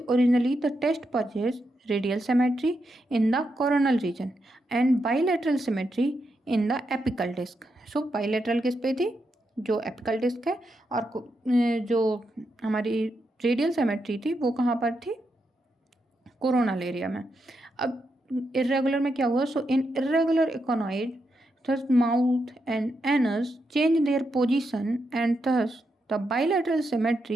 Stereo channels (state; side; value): normal; both; correlation 0.84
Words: the test purchase radial symmetry in the coronal region and bilateral symmetry in the apical disc. So bilateral किस पे थी, जो एपिकल डिस्क है, और जो हमारी रेडियल सिमेट्री थी वो कहाँ पर थी, कोरोनल एरिया में। अब इर्रेगुलर में क्या हुआ, सो इन irregular इकोनॉइड thus mouth and anus changed their position and thus the bilateral